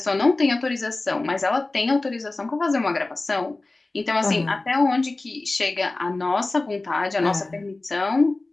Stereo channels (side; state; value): right; quieter; 3.1 dB